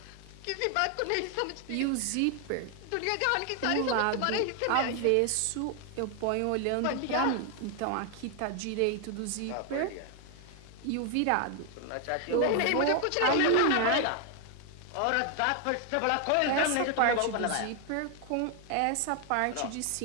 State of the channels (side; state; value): both; different; correlation 0.00